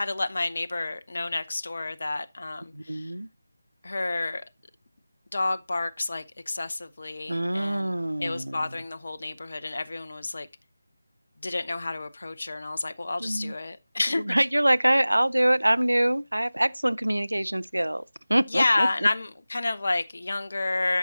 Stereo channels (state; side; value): inverted; both; correlation -0.98